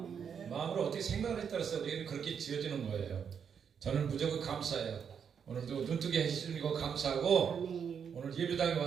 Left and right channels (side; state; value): left; quieter; 7.3 dB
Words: 마음으로 어떻게 생각을 따라서 우리는 그렇게 지어지는 거예요. 저는 무조건 감사해요. 오늘도 눈뜨게 해주시는 거 감사하고 아멘. 오늘 예배당에